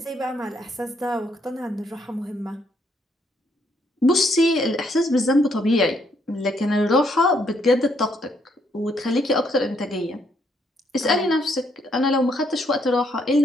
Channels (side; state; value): both; normal; correlation 0.72